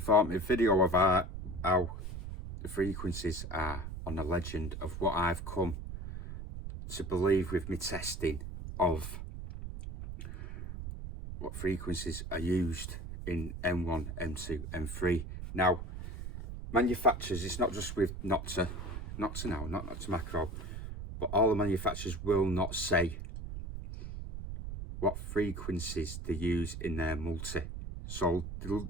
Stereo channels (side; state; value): right; noise; rumble, 8 dB below the sound